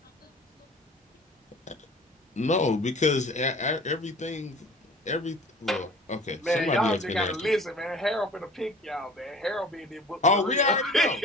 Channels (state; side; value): normal; both; correlation 0.44